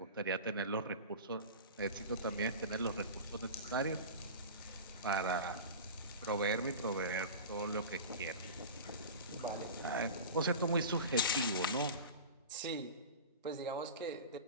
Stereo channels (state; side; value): inverted; both; correlation -0.31